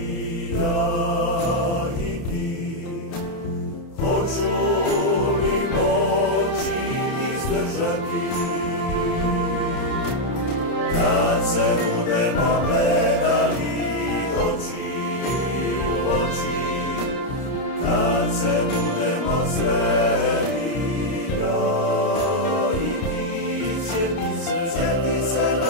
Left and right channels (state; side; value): late; right; 30 ms